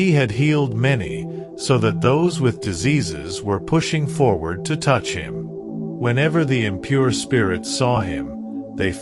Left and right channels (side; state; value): both; identical; correlation 1.00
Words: had healed many, so that those with diseases were pushing forward to touch him. Whenever the impure spirits saw him, they